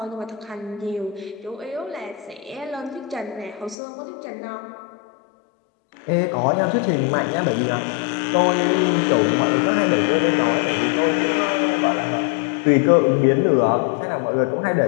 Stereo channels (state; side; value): drops out; right; at 3.8 s